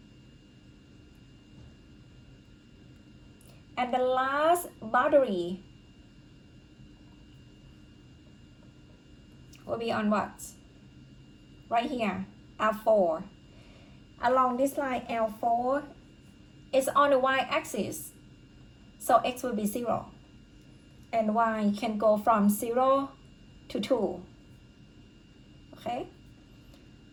And the last boundary will be on what? Right here, L4. Along this line, L4 is on the y-axis. So x will be 0. And y can go from 0 to 2. Okay?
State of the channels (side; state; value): both; identical; correlation 1.00